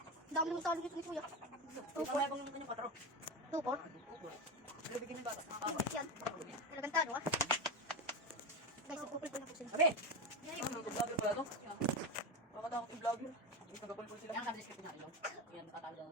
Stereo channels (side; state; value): both; normal; correlation 0.17